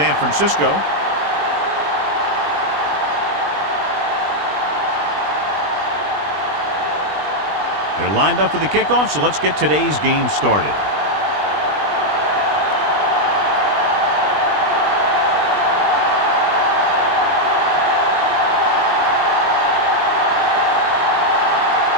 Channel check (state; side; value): late; left; 20 ms